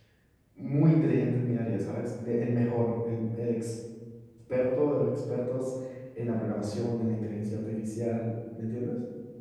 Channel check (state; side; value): identical; both; correlation 1.00